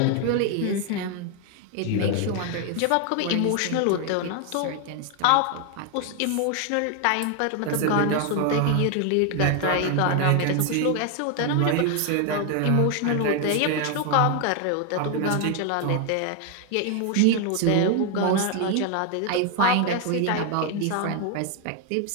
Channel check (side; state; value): both; different; correlation 0.01